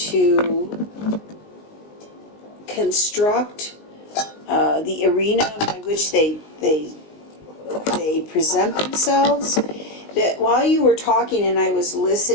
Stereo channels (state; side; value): late; right; 19 ms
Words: construct the arena by which they present themselves? That while you were talking and I was